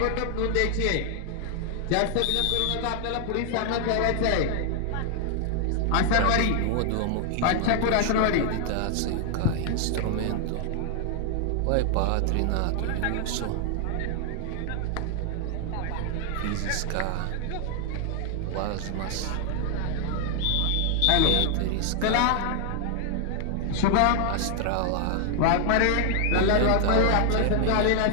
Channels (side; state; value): both; different; correlation 0.00